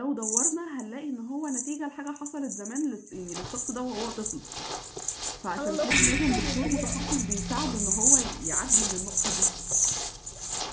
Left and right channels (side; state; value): both; identical; correlation 1.00